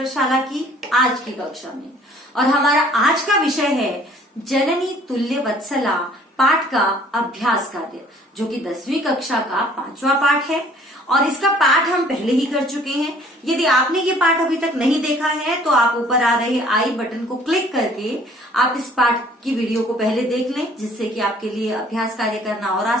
शाला की आज की कक्षा में। और हमारा आज का विषय है जननी तुल्य वत्सला पाठ का अभ्यास कार्य, जो कि 10वीं कक्षा का 5वां पाठ है। और इसका पाठ हम पहले ही कर चुके हैं। यदि आपने ये पाठ अभी तक नहीं देखा है तो आप ऊपर आ रहे आई बटन को क्लिक करके आप इस पाठ की वीडियो को पहले देख लें, जिससे कि आपके लिए अभ्यास कार्य करना और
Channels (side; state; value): both; normal; correlation 0.55